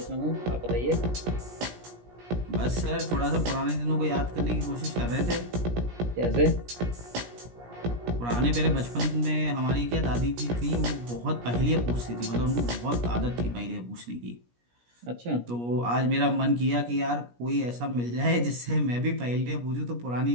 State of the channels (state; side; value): late; left; 17 ms